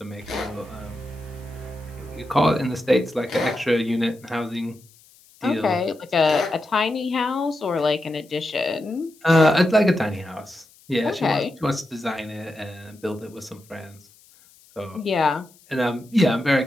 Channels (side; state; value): left; noise; hiss, 28 dB below the sound